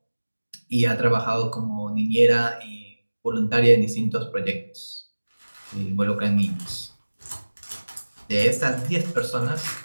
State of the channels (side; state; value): both; inverted; correlation -1.00